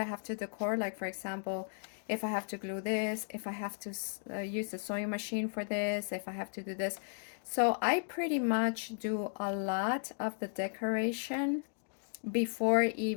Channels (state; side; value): silent; right; digital silence